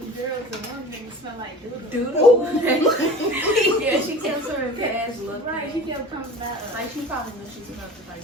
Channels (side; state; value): both; normal; correlation 0.39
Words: girls and one of them smelled like doodle. Doodle. Yeah, she kept swimming past looking. Right, she kept coming back. Like she probably knew she smelled